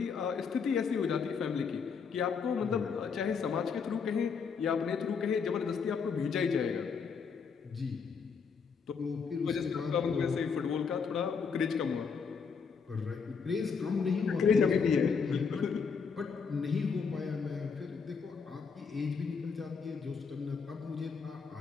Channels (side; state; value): right; quieter; 5.8 dB